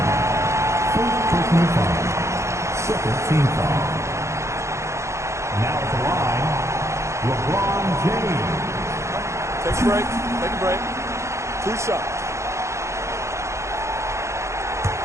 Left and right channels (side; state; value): left; late; 0.14 ms